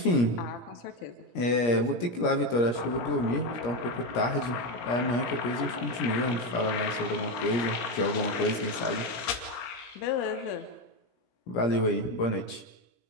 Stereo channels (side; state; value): right; late; 17 ms